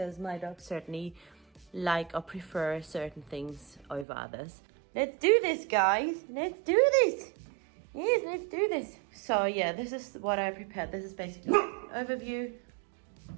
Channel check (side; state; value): left; drops out; at 4.0 s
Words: my dogs certainly like or prefer certain things over others. Let's do this, guys. Let's do this. Yes, let's do this. So yeah, this is what I prepared. This is basically an overview